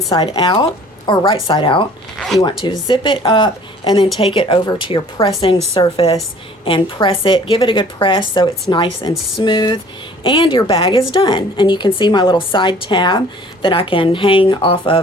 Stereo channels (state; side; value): normal; both; correlation 0.52